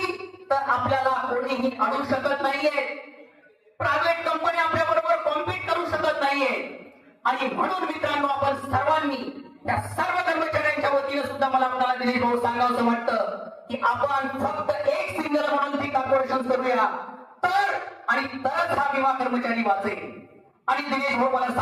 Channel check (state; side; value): identical; both; correlation 1.00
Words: तर आपल्याला कोणीही अडू शकत नाहीये. प्रायव्हेट कंपनी आपल्या बरोबर कॉम्पीट करू शकत नाहीये. आणि म्हणून मित्रांनो, आपण सर्वांनी त्या सर्व कर्मचाऱ्यांच्या वतीने सुद्धा मला आपल्याला दिलीप भाऊ सांगावं वाटतं की आपण फक्त एक सिंगल म्हणून ती कॉर्पोरेशन करूया तर आणि तरच हा विमा कर्मचारी वाचेल. आणि दिनेश भाऊ मला